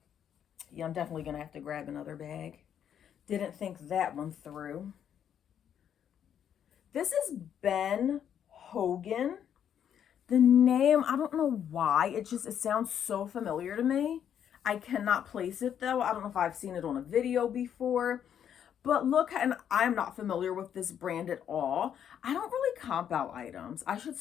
Yeah, I'm definitely going to have to grab another bag. Didn't think that one through. This is Ben Hogan. The name, I don't know why. It sounds so familiar to me. I cannot place it though. I don't know if I've seen it on a video before. But look, and I'm not familiar with this brand at all. I don't really comp out items. I should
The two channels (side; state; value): right; quieter; 9.1 dB